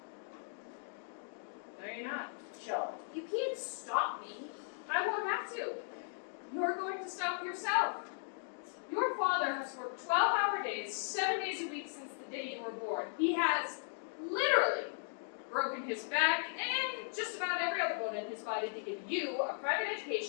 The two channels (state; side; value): silent; right; digital silence